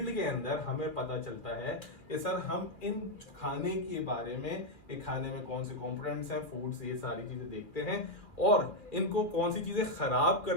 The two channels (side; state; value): right; late; 2.1 ms